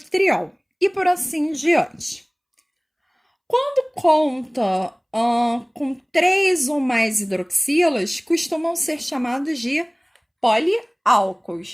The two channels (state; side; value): identical; both; correlation 1.00